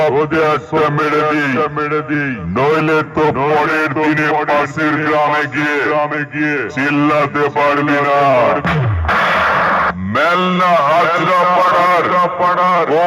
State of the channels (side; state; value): both; identical; correlation 1.00